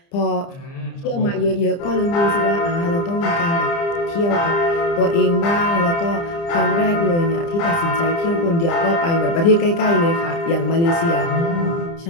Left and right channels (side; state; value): right; late; 30 ms